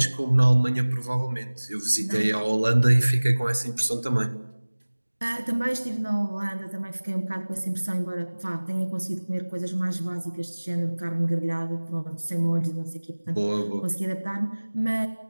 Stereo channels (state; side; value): inverted; both; correlation -1.00